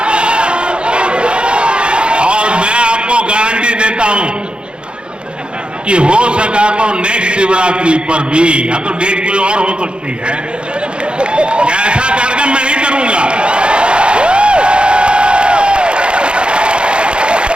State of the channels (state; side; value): late; left; 0.055 ms